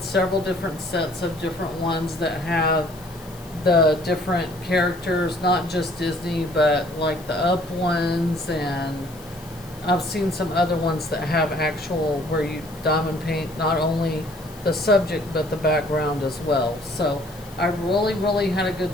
several different sets of different ones that have the different characters, not just Disney, but like the Up ones, and I've seen some other ones that have actual where you diamond paint not only the subject but the background as well. So I really had a good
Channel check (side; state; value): left; noise; hiss, 22 dB below the sound